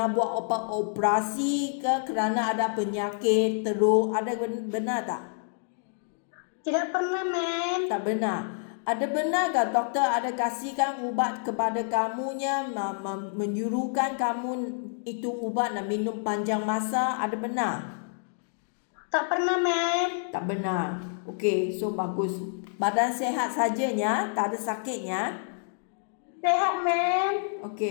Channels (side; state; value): right; silent; digital silence